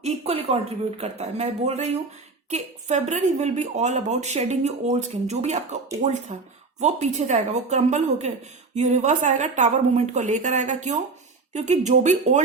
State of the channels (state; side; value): quieter; left; 4.1 dB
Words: कंट्रीब्यूट करता है। मैं बोल रही हूं कि February will be all about shedding your old skin. जो भी आपका ओल्ड था वो पीछे जाएगा, वो क्रम्बल होके यूनिवर्स आएगा, टावर मूवमेंट को लेकर आएगा। क्यों? क्योंकि जो भी